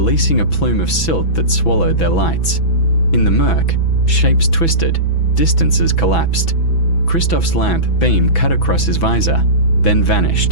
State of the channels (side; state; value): right; late; 6.1 ms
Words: a plume of silt that swallowed their lights. In the murk, shapes twisted, distances collapsed. Christoph's lamp beam cut across his visor, then